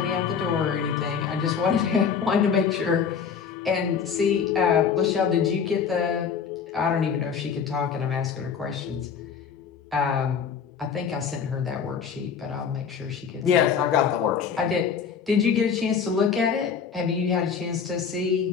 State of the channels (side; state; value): right; quieter; 6.7 dB